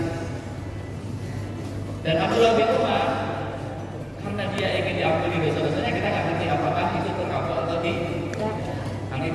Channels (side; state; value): both; identical; correlation 1.00